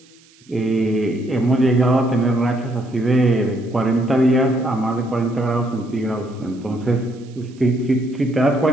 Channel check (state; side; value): noise; right; hiss, 29 dB below the sound